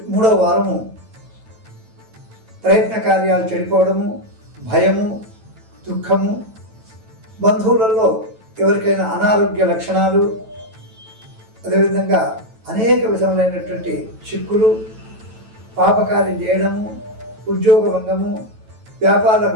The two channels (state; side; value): late; left; 9.0 ms